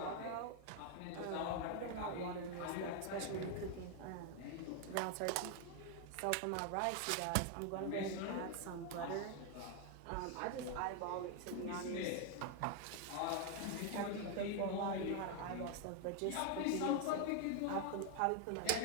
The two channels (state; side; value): different; both; correlation 0.00